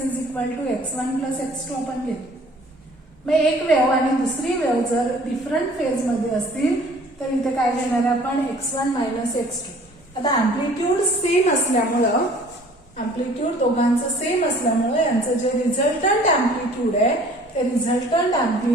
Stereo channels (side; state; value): both; normal; correlation 0.52